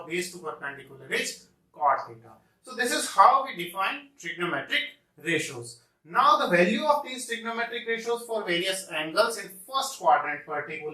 of base to perpendicular is cot theta. So this is how we define trigonometric ratios. Now the value of these trigonometric ratios for various angles in first quadrant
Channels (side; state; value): both; identical; correlation 1.00